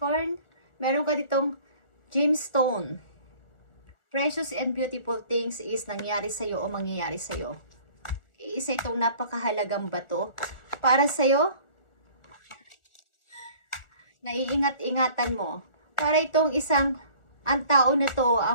meron ka ditong gemstone. Precious and beautiful things is nangyari sa iyo o mangyayari sa iyo. Isa itong napakahalagang bato para sa'yo naiingat-ingatan mo. Para itong ang tao na to,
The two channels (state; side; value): late; right; 1.4 ms